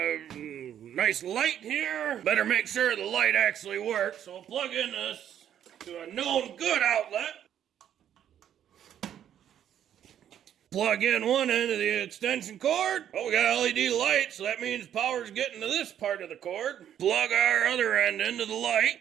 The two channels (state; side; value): quieter; left; 10.1 dB